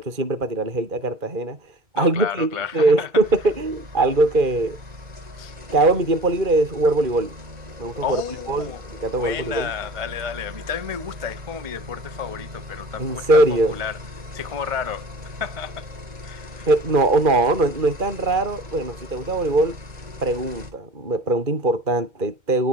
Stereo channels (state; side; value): late; left; 2.1 ms